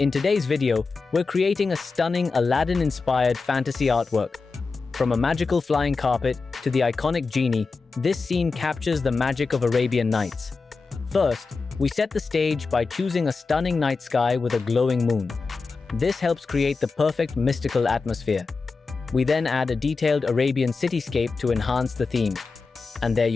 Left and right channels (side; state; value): right; quieter; 4.3 dB